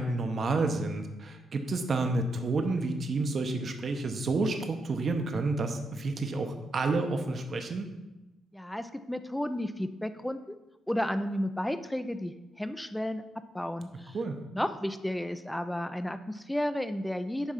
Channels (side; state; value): both; normal; correlation 0.85